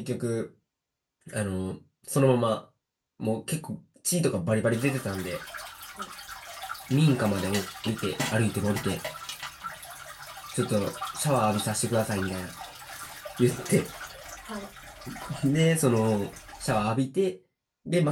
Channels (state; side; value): identical; both; correlation 1.00